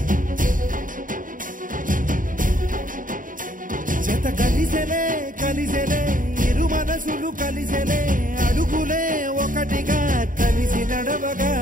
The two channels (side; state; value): left; late; 0.39 ms